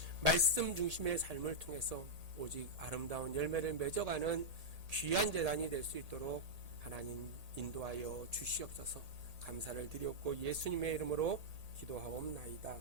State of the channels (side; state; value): left; late; 1.8 ms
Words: 말씀 중심의 삶을 통해서 오직 아름다운 열매를 맺어가는 귀한 재단이 될 수 있도록 하나님 인도하여 주시옵소서. 감사를 드렸고 예수님의 이름으로 기도하옵나이다.